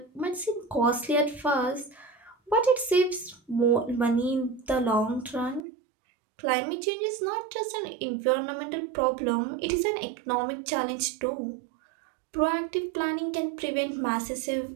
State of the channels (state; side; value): drops out; left; at 5.7 s